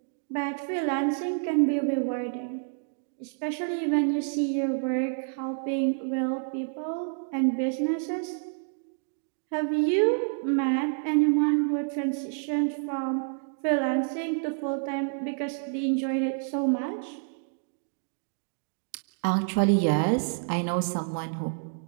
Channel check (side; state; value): left; silent; digital silence